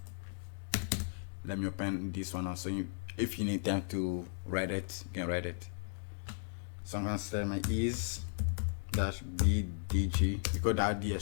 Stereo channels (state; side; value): silent; right; digital silence